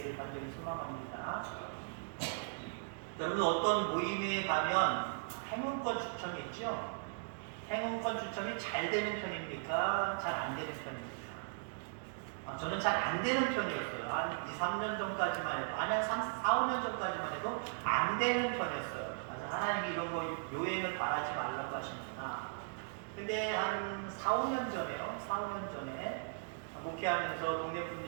간절히 소망합니다. 여러분 어떤 모임에 가면 행운권 추첨이 있죠? 행운권 추첨이 잘 되는 편입니까? 잘 안 되는 편입니까? 저는 잘 안 되는 편이었어요. 한 2, 3년 전까지만 해도, 아니, 한 4, 5년 전까지만 해도 안 되는 편이었어요. 그래서 하나님이 이런 거 요행을 바라지 말라고 하시는구나. 근데 한 4, 5년 전에요. 4, 5년 전에 목회하면서 동네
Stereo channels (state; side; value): silent; left; digital silence